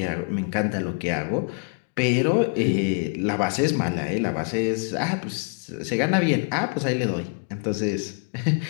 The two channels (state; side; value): quieter; right; 38.0 dB